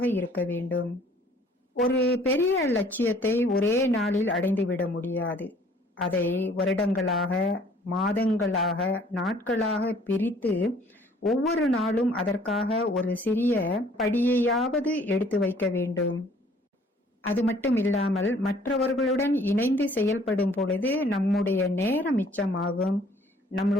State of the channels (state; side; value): normal; both; correlation 0.57